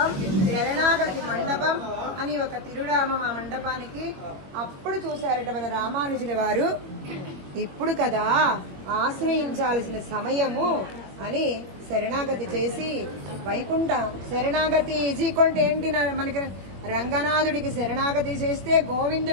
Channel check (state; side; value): late; left; 22 ms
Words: శరణాగతి మండపం అని ఒక తిరునామం ఆ మండపానికి. అప్పుడు చూశారట మన రామానుజుల వారు, ఇప్పుడు కదా ఆశ్రయించాల్సిన సమయము అని శరణాగతి చేసి వైకుంఠ శరణాగతి ఈజీకొంటే ఏంటి, మనకి రంగనాథుడికి శరణాగతి చేస్తే,